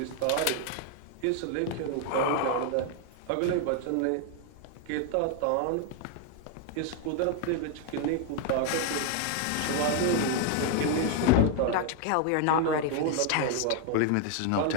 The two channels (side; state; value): both; different; correlation 0.00